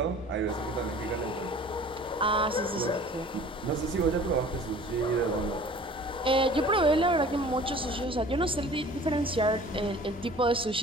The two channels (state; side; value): normal; both; correlation 0.47